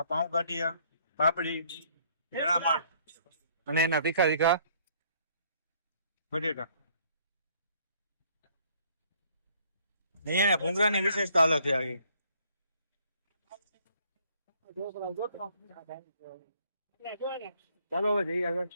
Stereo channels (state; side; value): inverted; both; correlation -0.63